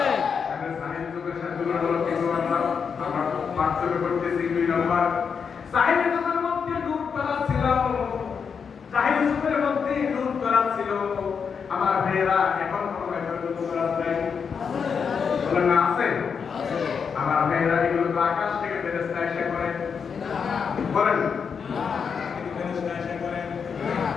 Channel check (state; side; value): quieter; right; 6.3 dB